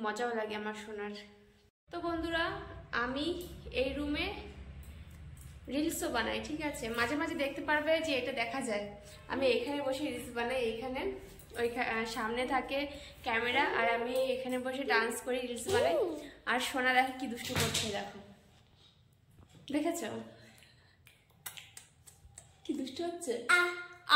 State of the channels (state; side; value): identical; both; correlation 1.00